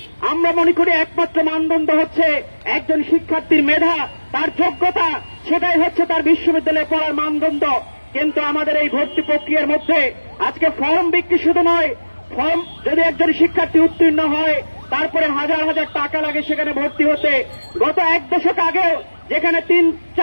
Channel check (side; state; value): both; inverted; correlation -1.00